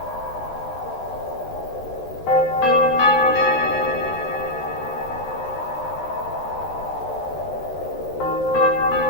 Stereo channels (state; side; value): normal; both; correlation -0.05